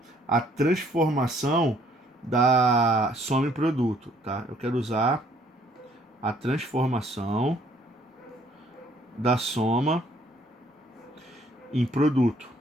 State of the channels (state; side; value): normal; both; correlation 0.63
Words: a transformação da soma em produto, tá? Eu quero usar a transformação da soma em produto.